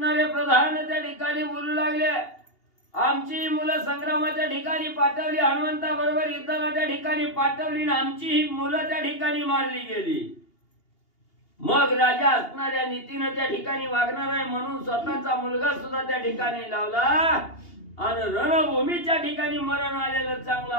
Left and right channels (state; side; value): late; right; 2.8 ms